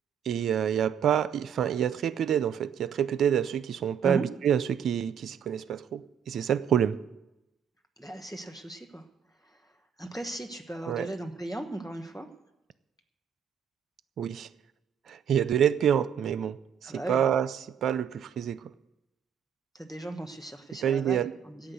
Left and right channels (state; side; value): quieter; left; 8.1 dB